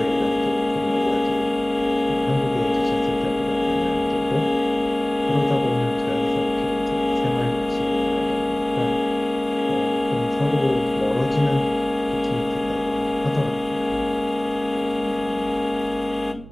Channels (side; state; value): right; noise; hum, 18 dB below the sound